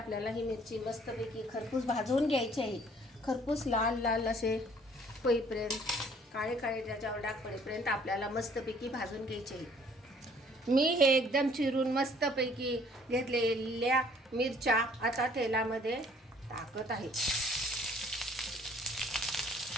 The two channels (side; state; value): both; normal; correlation 0.58